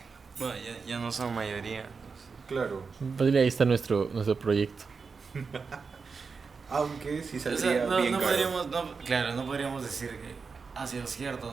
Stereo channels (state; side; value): quieter; left; 5.0 dB